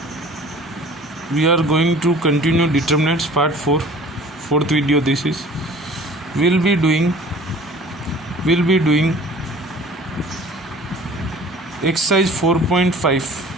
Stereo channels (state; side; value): normal; both; correlation 0.47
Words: we are going to continue determinants part 4, fourth video. This is we'll be doing exercise 4.5.